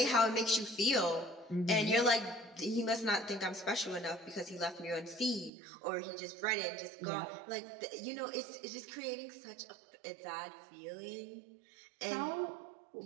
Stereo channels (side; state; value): left; drops out; at 5.5 s